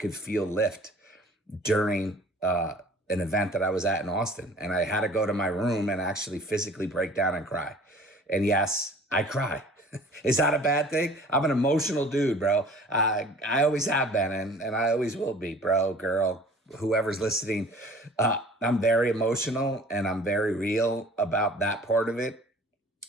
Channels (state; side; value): normal; both; correlation 0.48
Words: feel lift during an event that I was at in Austin. And I had to go to my room and actually physically break down and cry. And yes, I cry. Is that a bad thing? I'm an emotional dude, bro. I always have been, and I always will be, bro, girl, whoever's listening. I'm very emotional, and I'm very real about that part of it.